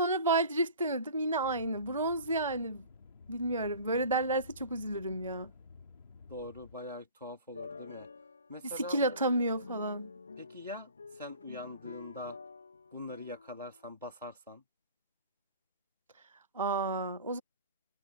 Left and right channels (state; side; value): inverted; both; correlation -0.42